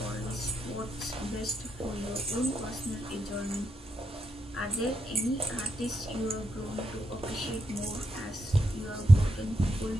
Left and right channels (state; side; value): normal; both; correlation 0.82